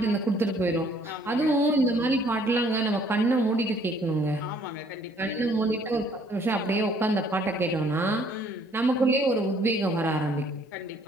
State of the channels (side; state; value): both; normal; correlation 0.61